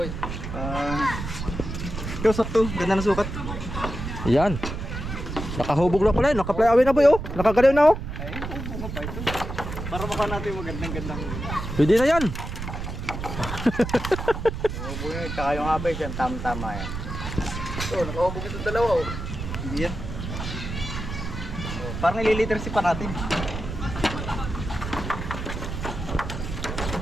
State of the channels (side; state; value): right; noise; rumble, 6 dB below the sound